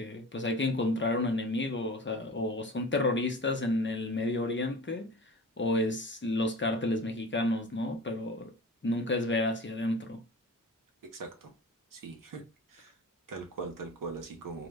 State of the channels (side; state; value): both; normal; correlation 0.37